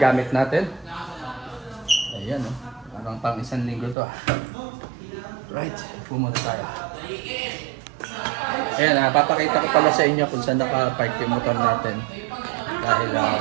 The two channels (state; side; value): drops out; left; at 4.0 s